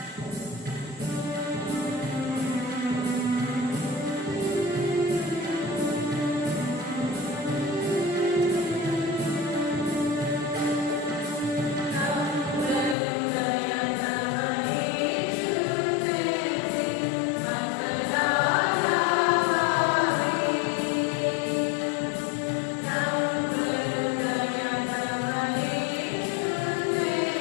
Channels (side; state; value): right; drops out; at 13.0 s